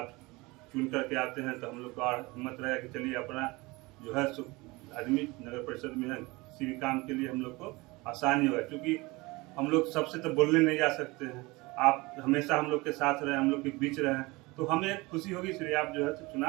चुन करके आते हैं तो हम लोग को हिम्मत रहेगा कि चलिए अपना जो है आदमी नगर परिषद में है, किसी भी काम के लिए हम लोग को आसानी होगा, क्योंकि हम लोग सबसे तो बोलने नहीं जा सकते हैं। आप हमेशा हम लोग के साथ रहे, हम लोग के बीच रहे, तो हमें खुशी होगी। इसलिए आप जो है तो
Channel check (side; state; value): left; quieter; 23.4 dB